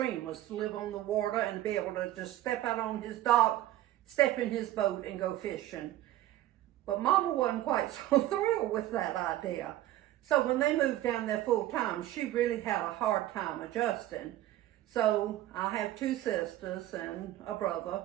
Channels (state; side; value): quieter; left; 14.4 dB